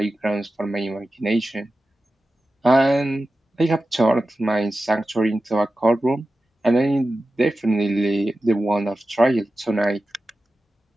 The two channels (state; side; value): normal; both; correlation 0.94